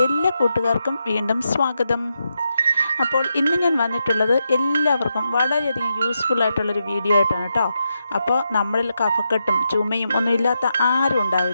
എല്ലാ കൂട്ടുകാർക്കും വീണ്ടും സ്വാഗതം. അപ്പോൾ ഇന്ന് ഞാൻ വന്നിട്ടുള്ളത് എല്ലാവർക്കും വളരെയധികം യൂസ്ഫുൾ ആയിട്ടുള്ളൊരു വീഡിയോ ആയിട്ടാണ് കേട്ടോ. അപ്പോൾ നമ്മളിൽ കഫക്കെട്ടും ചുമയും ഒന്നും ഇല്ലാത്ത ആരും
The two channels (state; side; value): inverted; both; correlation -0.85